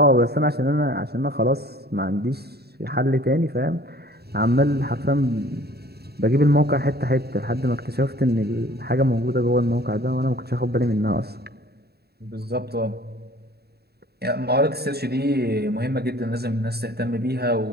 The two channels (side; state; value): left; late; 0.47 ms